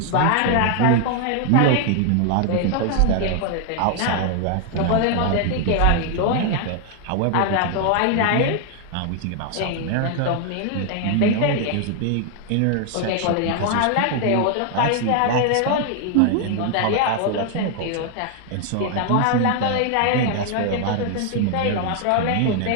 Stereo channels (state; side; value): different; both; correlation 0.00